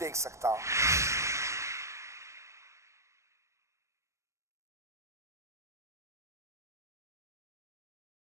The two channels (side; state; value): left; late; 0.14 ms